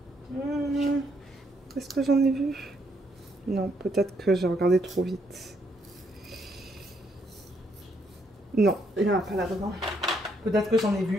Est-ce que j'en ai vu? Non, peut-être que j'ai regardé trop vite. Non, il n'y en a pas là-dedans. Peut-être que j'en ai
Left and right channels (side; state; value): both; normal; correlation 0.73